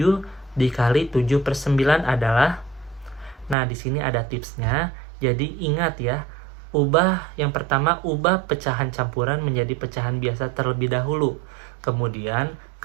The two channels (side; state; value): left; drops out; at 3.6 s